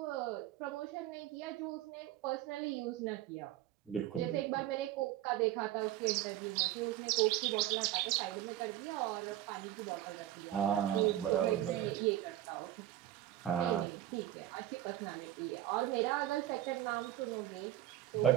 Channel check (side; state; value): left; quieter; 13.5 dB